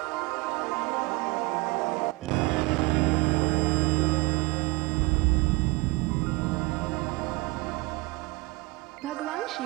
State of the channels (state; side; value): quieter; left; 24.0 dB